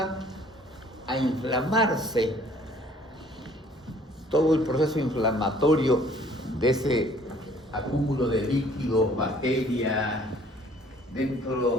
a inflamarse, todo el proceso inflamatorio de ese acúmulo de líquidos, bacterias,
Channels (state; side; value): normal; both; correlation 0.56